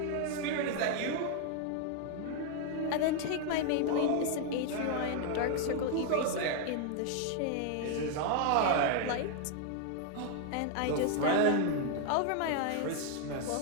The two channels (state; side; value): different; both; correlation 0.00